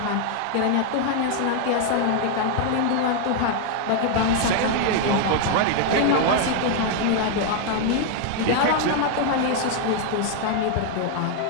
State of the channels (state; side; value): different; both; correlation 0.00